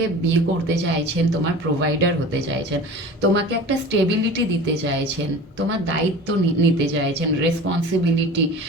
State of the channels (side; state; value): both; normal; correlation 0.37